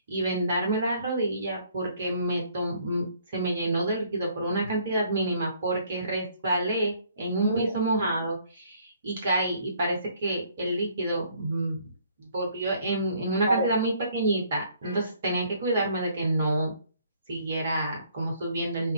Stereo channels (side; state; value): both; inverted; correlation -0.63